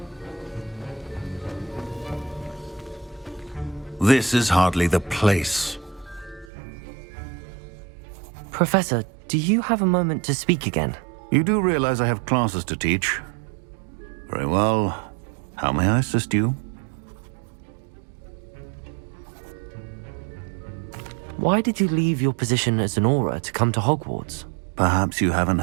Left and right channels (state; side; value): drops out; left; at 6.5 s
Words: This is hardly the place. Professor, do you have a moment to speak again? You do realize I have classes to teach. Very well. How may I assist you? Why did you leave your position as an Auror to come to Hogwarts? Perhaps you haven't